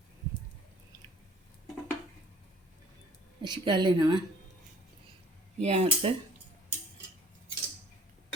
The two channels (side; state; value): both; normal; correlation 0.53